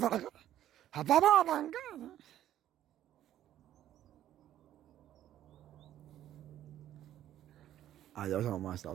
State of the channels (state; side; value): quieter; left; 12.1 dB